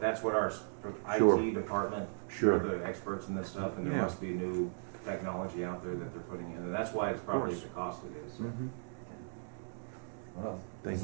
that's what our Sure. IT department, Sure. are the experts in this stuff, and there Yeah. must be new technology out there that they're putting in, and that's why it's probably course. the cost it is. So. Well, Thank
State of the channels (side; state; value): left; silent; digital silence